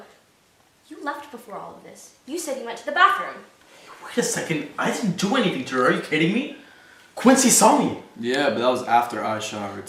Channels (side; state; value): both; identical; correlation 1.00